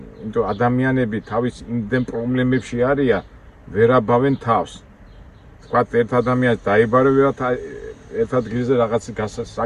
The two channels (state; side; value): identical; both; correlation 1.00